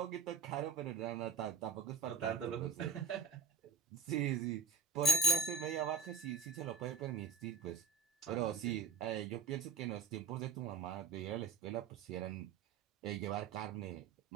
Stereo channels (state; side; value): quieter; left; 4.9 dB